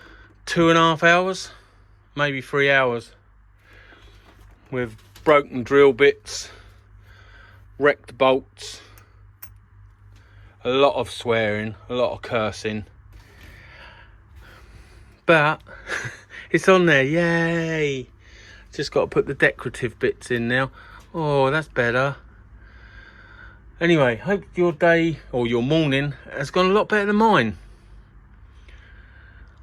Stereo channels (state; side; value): identical; both; correlation 1.00